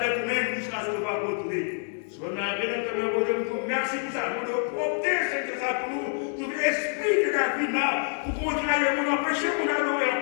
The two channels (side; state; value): right; silent; 60 dB below the other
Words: avec nous-mêmes jusqu'à ce qu'on va retourner. Si on a bien entendu, merci pour ça. Pour nous opter, c'est ça pour nous. Tout l'esprit de la vie là, pour continuer, on empêcher mon adorer,